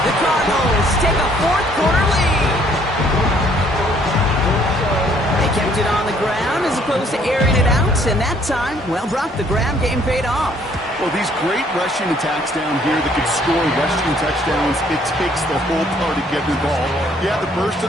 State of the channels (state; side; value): normal; both; correlation 0.63